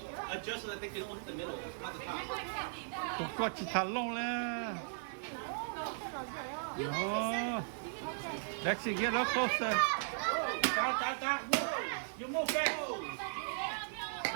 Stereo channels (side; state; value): left; silent; 53 dB below the other